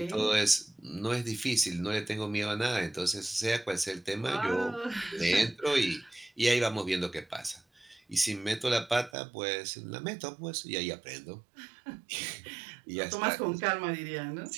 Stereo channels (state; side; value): drops out; left; at 9.1 s